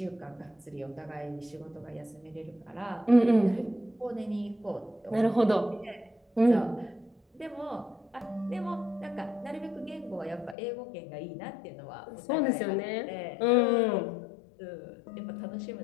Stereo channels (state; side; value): drops out; right; at 10.6 s